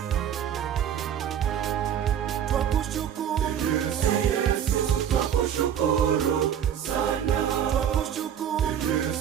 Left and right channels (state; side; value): quieter; left; 9.2 dB